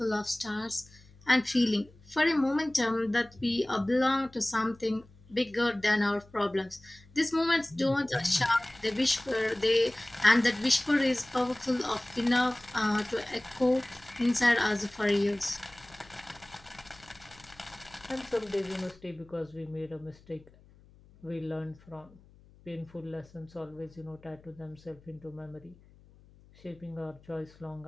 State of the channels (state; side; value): noise; left; hum, 26 dB below the sound